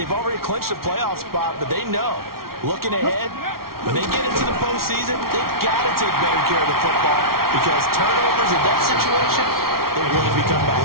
already clinched a playoff spot, but they know, looking ahead, when they get into the postseason, they've got to take better care of the football because turnovers in that situation, they really become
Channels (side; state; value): left; late; 0.93 ms